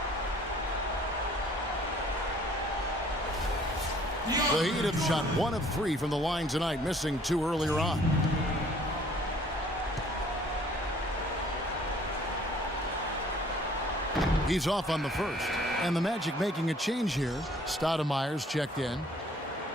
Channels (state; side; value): normal; both; correlation 0.57